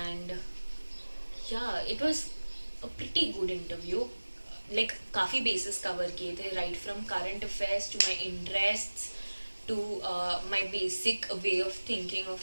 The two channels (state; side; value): inverted; both; correlation -1.00